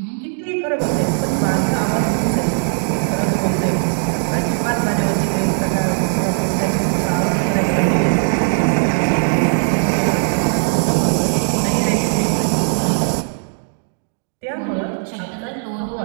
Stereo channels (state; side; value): silent; left; 56 dB below the other